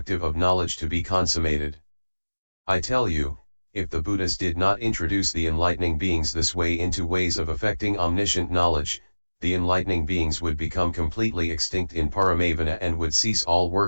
of knowledge to be consummated. I tell you, if the Buddhas did not introduce the enlightening beings this way into ways of effecting omniscient knowledge, the enlightening beings would become completely extinct in Paramavana and would cease all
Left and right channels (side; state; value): both; inverted; correlation -1.00